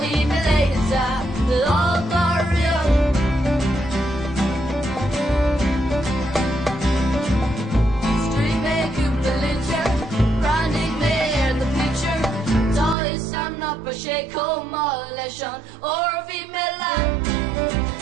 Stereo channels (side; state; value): left; drops out; at 13.0 s